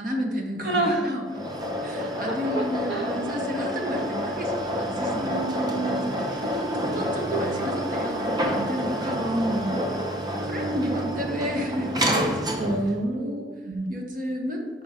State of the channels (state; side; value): normal; both; correlation 0.51